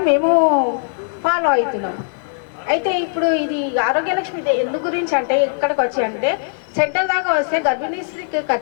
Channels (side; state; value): right; silent; digital silence